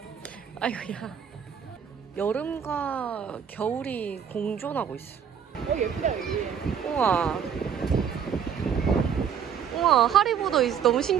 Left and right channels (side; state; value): left; quieter; 7.8 dB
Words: 아이고야. 여름과 겨울이 공존하고 있어. 예쁘다 여기. 우와. 우와, 하리보도 너무